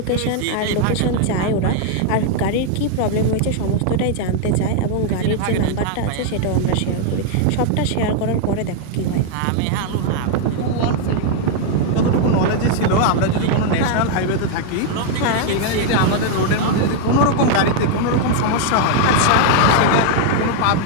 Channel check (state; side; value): different; both; correlation 0.00